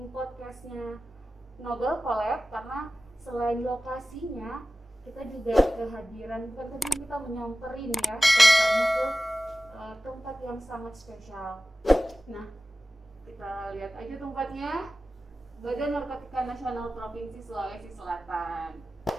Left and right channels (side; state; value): both; normal; correlation 0.95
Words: podcastnya Noble Collab, karena selain lokasinya, kita juga kehadiran, bukan kita menyamperin ya, tempatnya ke tempat yang sangat spesial. Nah, kita lihat aja tempatnya. Badan Narkotika Nasional Provinsi Sulawesi Selatan.